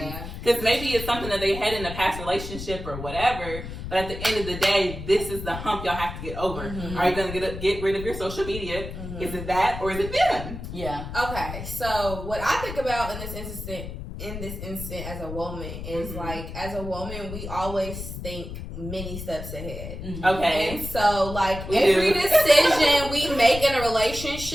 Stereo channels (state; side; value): noise; left; rumble, 9 dB below the sound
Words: Because maybe it's something that they had in a past relationship or whatever, but at the end of the day, this is the hump y'all have to get over. Are you going to get rid of your social media? Is it that or is it them? yeah. Okay, so what I think about in this instant as a woman is like, as a woman, we always think many steps ahead. Okay. And so, like, We every do. decision we make in a